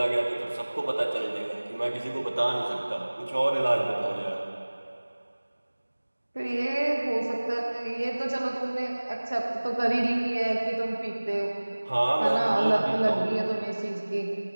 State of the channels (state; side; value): inverted; both; correlation -1.00